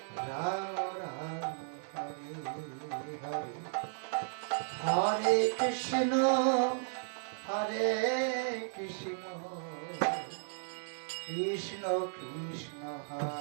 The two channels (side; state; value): left; silent; digital silence